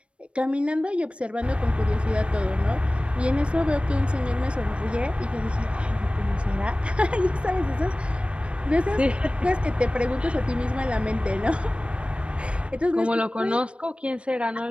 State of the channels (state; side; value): late; left; 0.060 ms